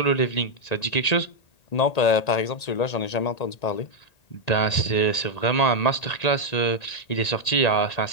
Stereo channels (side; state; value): right; late; 1.8 ms